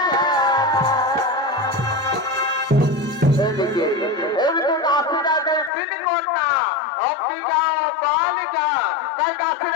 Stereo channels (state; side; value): drops out; right; at 5.7 s